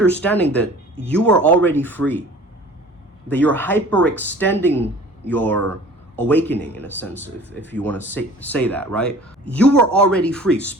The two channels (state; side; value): normal; both; correlation 0.47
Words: that you are already free, that you're hyperextending your awakening in a sense, if you want to say that, right? You are already free.